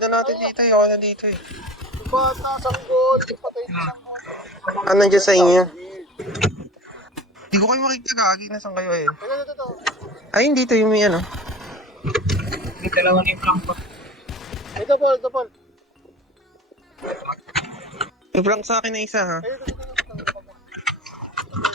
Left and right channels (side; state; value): both; normal; correlation 0.37